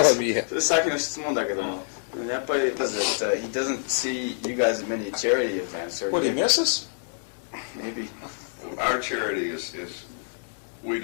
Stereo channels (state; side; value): silent; right; digital silence